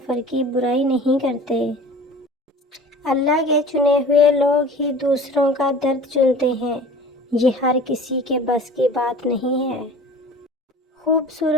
کی برائی نہیں کرتے۔ اللہ کے چنے ہوئے لوگ ہی دوسروں کا درد چنتے ہیں، یہ ہر کسی کے بس کی بات نہیں ہے۔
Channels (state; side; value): normal; both; correlation 0.42